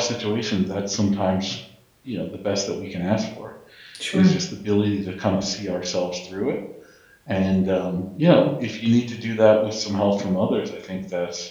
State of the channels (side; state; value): both; identical; correlation 1.00